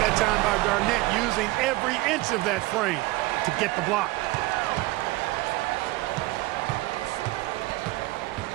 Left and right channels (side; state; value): left; quieter; 19.9 dB